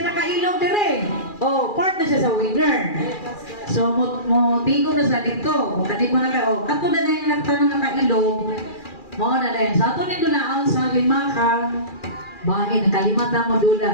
nakailog dire. Oh, part na siya sa winner. So, mo tigo na sa dito. Kung kanit mo na ka, oh, kato na yung nagtanong nakailog, mo na rin. Sa ato nito na sa lima ka, bakit nakalimata mo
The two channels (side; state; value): right; late; 2.4 ms